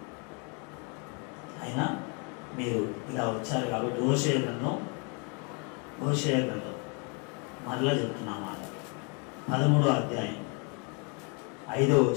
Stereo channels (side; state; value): right; quieter; 35.3 dB